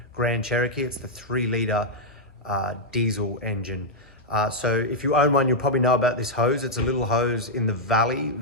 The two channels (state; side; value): normal; both; correlation -0.04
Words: Grand Cherokee. It's the 3-litre diesel engine. So if you own one, you'll probably know about this hose. It's a little hose in the valley